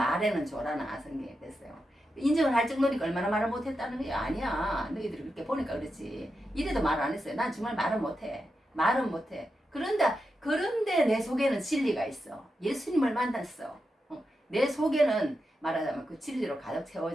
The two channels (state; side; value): normal; both; correlation 0.88